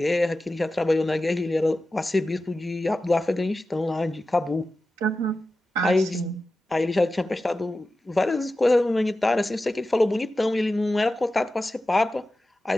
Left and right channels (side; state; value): both; normal; correlation 0.93